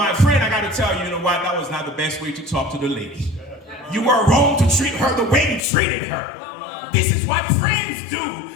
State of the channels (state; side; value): drops out; right; at 5.6 s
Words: friend, I got to tell you, you know what, that was not the best way to talk to the lady. You were wrong to treat her the way you treated her. This is what friends do.